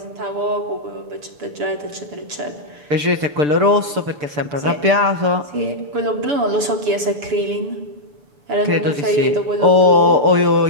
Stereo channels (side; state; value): left; late; 6.8 ms